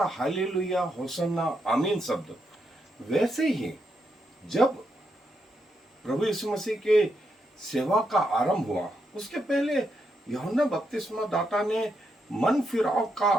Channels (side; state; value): both; normal; correlation 0.81